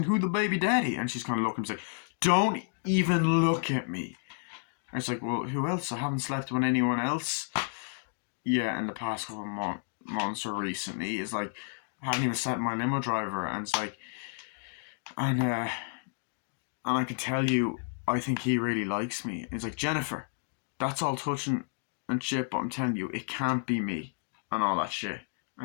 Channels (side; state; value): right; silent; digital silence